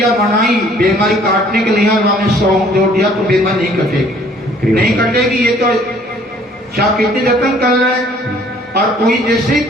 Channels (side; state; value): both; normal; correlation 0.58